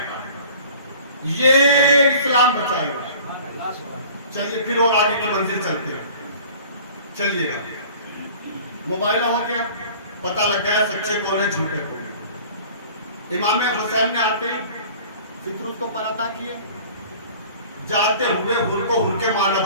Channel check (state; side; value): inverted; both; correlation -0.46